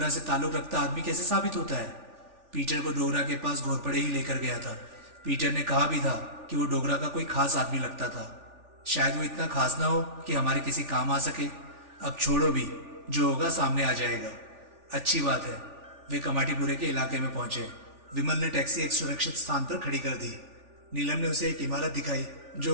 से ताल्लुक रखता आदमी कैसे साबित होता है? पीटर को डोगरा के पास घोरपड़े ही लेकर गया था। पीटर ने कहा भी था कि वो डोगरा का कोई खास आदमी लगता था। शायद वो इतना खास ना हो कि हमारे किसी काम आ सके। अब छोड़ो भी, जो होगा सामने आ जाएगा। अच्छी बात है। वे कमाटीपुरे के इलाके में पहुंचे। विमल ने टैक्सी एक सुरक्षित स्थान पर खड़ी कर दी। नीलम ने उसे एक इमारत दिखाई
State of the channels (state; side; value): late; left; 3.4 ms